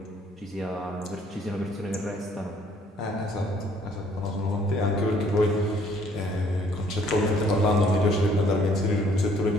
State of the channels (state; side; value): normal; both; correlation 0.62